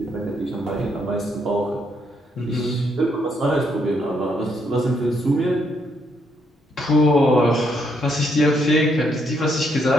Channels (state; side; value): normal; both; correlation 0.74